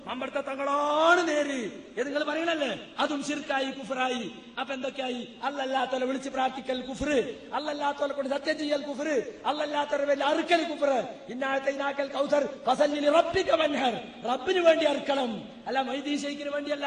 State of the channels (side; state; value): both; identical; correlation 1.00